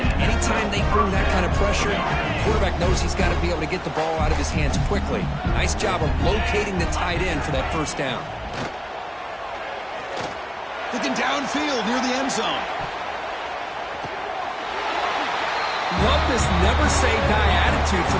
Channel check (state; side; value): identical; both; correlation 1.00